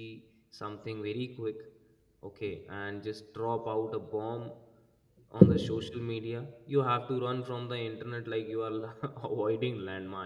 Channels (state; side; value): identical; both; correlation 1.00